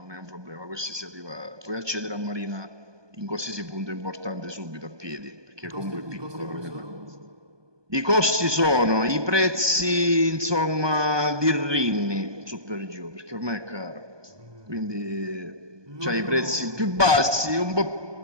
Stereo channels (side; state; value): left; late; 1.2 ms